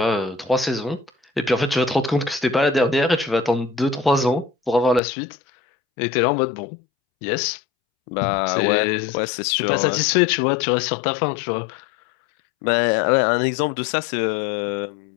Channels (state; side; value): drops out; right; at 5.0 s